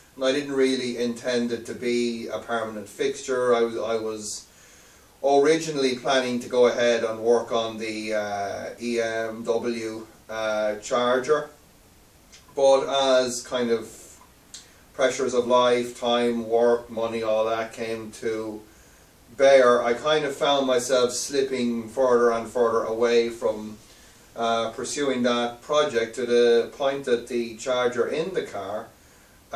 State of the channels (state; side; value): identical; both; correlation 1.00